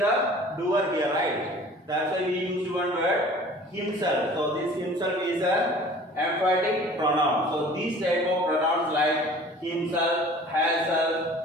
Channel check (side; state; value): both; normal; correlation 0.47